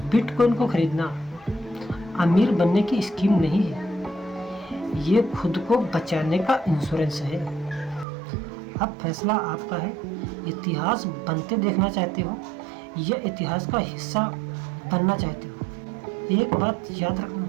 बिटकॉइन को खरीदना अमीर बनने की स्कीम नहीं है, ये खुद को बचाने का इंश्योरेंस है। अब फैसला आपका है, इतिहास बनते देखना चाहते हो या इतिहास का हिस्सा बनना चाहते हो। एक बात याद रखना,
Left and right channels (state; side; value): drops out; left; at 8.1 s